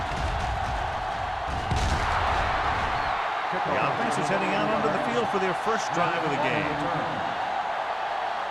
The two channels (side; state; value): both; identical; correlation 1.00